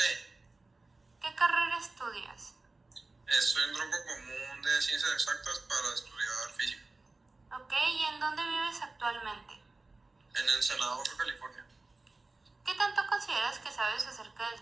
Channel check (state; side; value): quieter; left; 3.4 dB